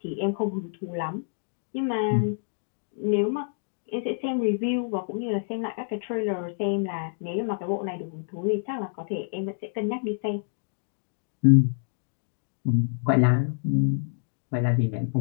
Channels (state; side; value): silent; right; digital silence